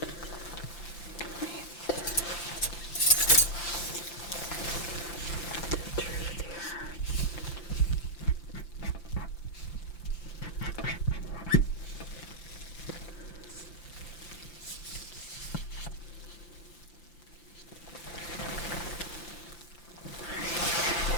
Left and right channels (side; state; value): right; late; 5.9 ms